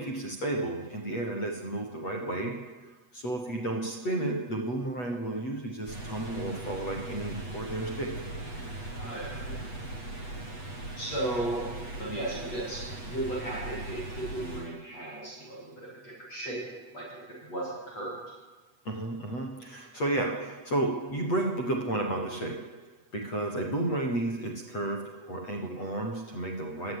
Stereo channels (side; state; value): right; late; 8.2 ms